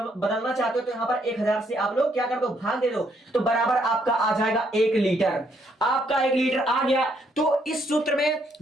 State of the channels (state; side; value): normal; both; correlation 0.71